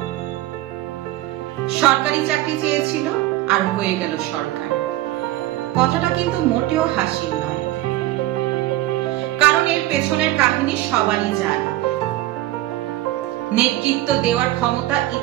সরকারি চাকরি চেয়েছিল আর হয়ে গেল সরকার। কথাটা কিন্তু মোটেও হাসির নয়, কারণ এর পেছনের কাহিনী সবারই জানা। নেতৃত্ব দেওয়ার ক্ষমতা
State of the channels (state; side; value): quieter; left; 16.0 dB